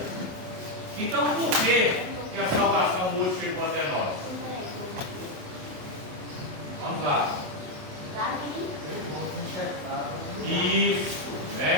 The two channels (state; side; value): late; left; 27 ms